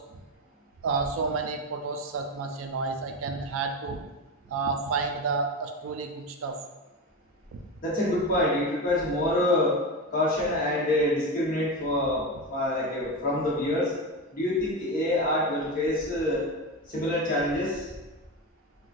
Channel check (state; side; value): normal; both; correlation 0.19